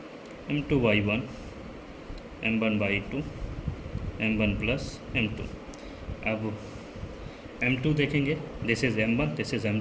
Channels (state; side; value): identical; both; correlation 1.00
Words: m2y1 m1/2 m1 plus m2। अब m2 देखेंगे, this is m1, this is